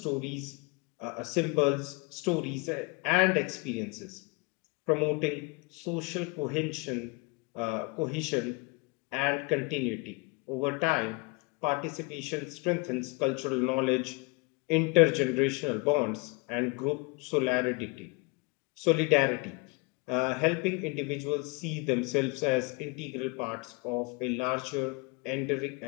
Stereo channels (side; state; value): right; quieter; 28.1 dB